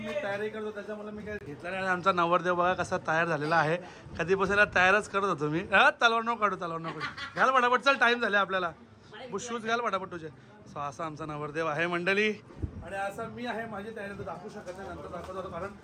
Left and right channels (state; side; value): identical; both; correlation 1.00